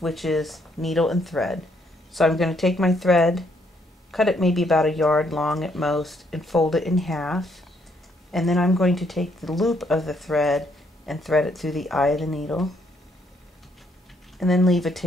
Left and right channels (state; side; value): normal; both; correlation 0.71